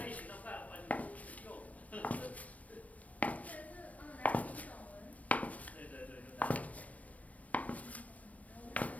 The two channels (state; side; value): late; right; 0.068 ms